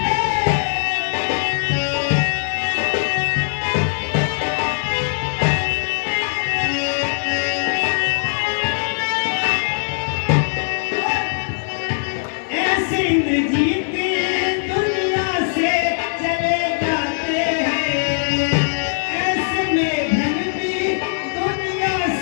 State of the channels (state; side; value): silent; right; digital silence